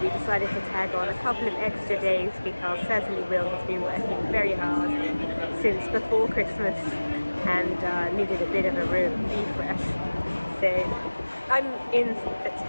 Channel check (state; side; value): inverted; both; correlation -1.00